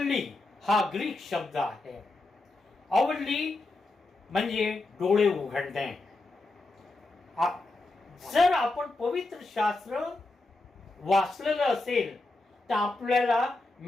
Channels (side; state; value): right; quieter; 3.0 dB